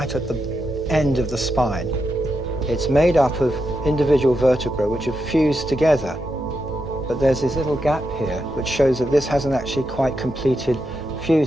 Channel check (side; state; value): both; normal; correlation 0.85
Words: at the end of the spine. It's made up of individual vertebrae which have fused together. But there's this little gap here which shows that this hasn't actually quite completed